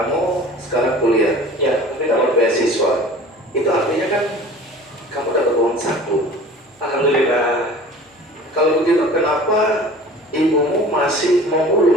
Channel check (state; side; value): normal; both; correlation 0.43